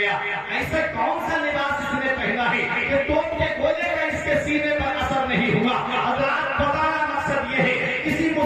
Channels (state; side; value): identical; both; correlation 1.00